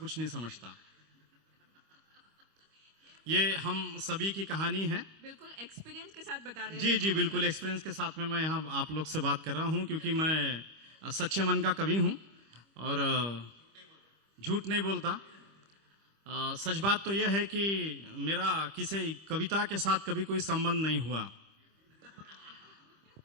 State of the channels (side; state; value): left; late; 25 ms